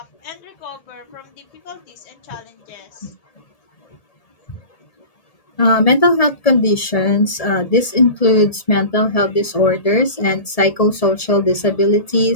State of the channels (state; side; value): late; right; 1.8 ms